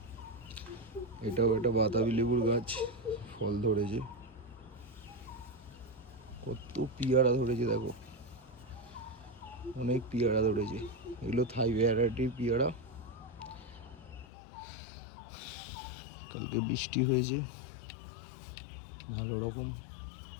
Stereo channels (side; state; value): right; drops out; at 14.2 s